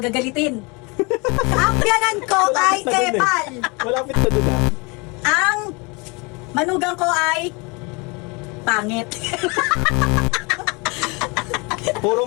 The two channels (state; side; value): quieter; right; 28.6 dB